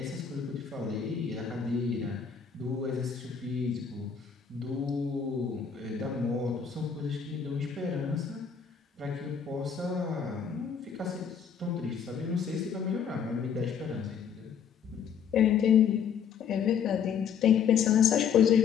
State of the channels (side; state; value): right; quieter; 7.2 dB